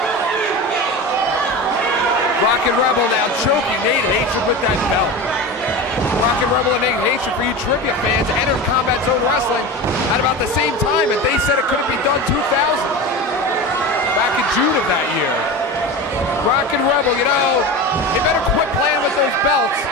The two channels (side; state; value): both; normal; correlation 0.27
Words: Rockin' Rebel now choking Nate Hatred with that belt. Rockin' Rebel and Nate Hatred, for you trivia fans, entered Combat Zone Wrestling at about the same time, and they said it couldn't be done 2000. Back in June of that year. Rockin' Rebel, you know, he better quit playing with those belts